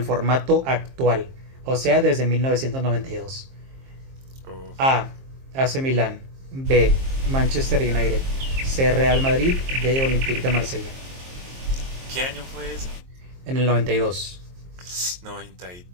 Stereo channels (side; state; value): left; late; 23 ms